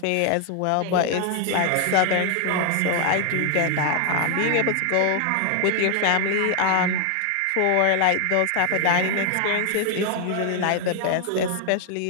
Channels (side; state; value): both; different; correlation 0.00